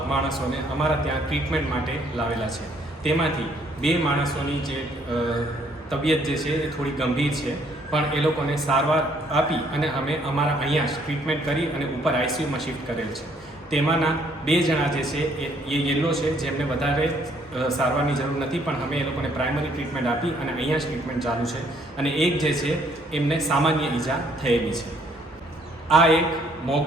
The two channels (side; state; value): both; normal; correlation 0.65